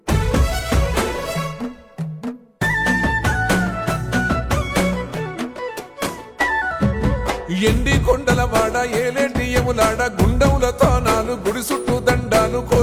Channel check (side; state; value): both; identical; correlation 1.00